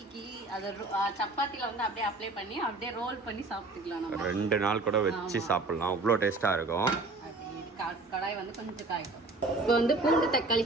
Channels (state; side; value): quieter; left; 3.2 dB